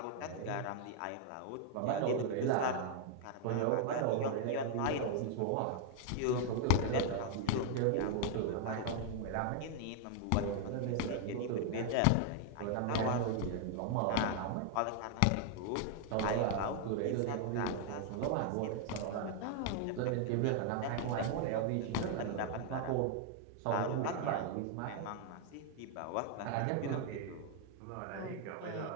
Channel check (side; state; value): both; different; correlation 0.00